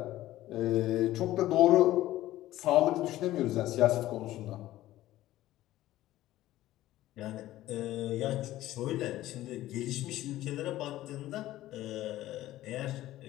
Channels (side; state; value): right; quieter; 15.1 dB